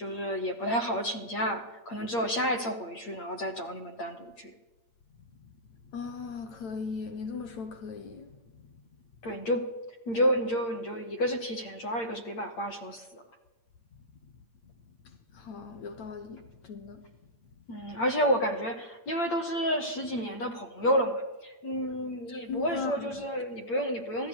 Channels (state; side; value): late; right; 8.7 ms